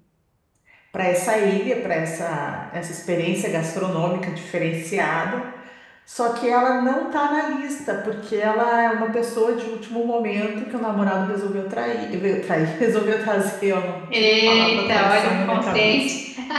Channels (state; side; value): identical; both; correlation 1.00